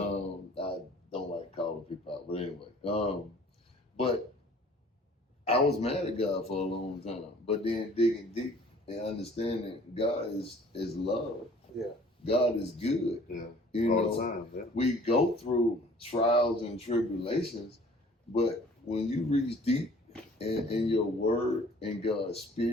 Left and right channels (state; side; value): normal; both; correlation 0.52